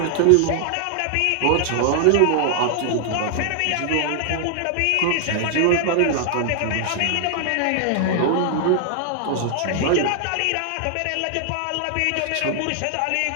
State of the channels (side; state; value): both; different; correlation 0.00